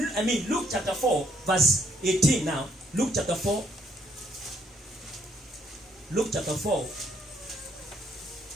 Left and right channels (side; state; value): both; normal; correlation 0.70